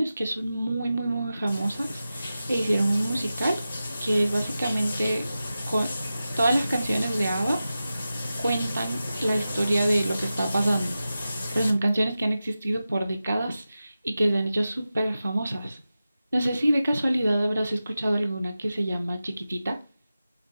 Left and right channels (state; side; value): inverted; both; correlation -0.93